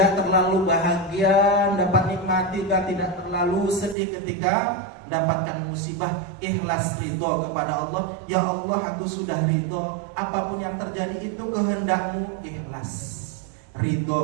terlalu bahagia dapat nikmati, tidak terlalu sedih ketika mendapatkan musibah. Ikhlas ridho kepada Allah. Ya Allah, aku sudah ridho, apapun yang terjadi itu kehendakmu. Ikhlas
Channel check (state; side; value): drops out; left; at 4.0 s